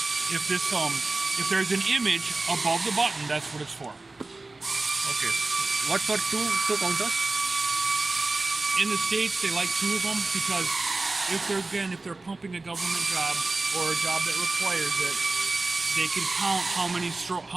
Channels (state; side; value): quieter; left; 3.4 dB